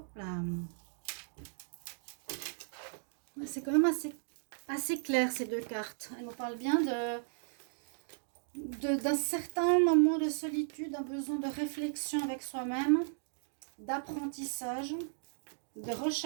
là. C'est quand même assez clair ces deux cartes. Elles nous parlent bien d'un certain moment de solitude, d'un besoin de réflexion avec soi-même, d'apprentissage, de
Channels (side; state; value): left; silent; digital silence